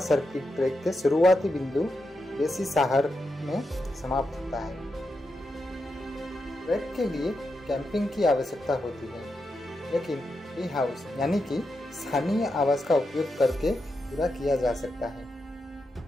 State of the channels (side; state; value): both; normal; correlation 0.86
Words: सर्किट ट्रैक के शुरुआती बिंदु बेसी साहर में समाप्त होता है। ट्रैक के लिए कैंपिंग की आवश्यकता होती है, लेकिन टी हाउस यानी कि स्थानीय आवास का उपयोग करके पूरा किया जा सकता है।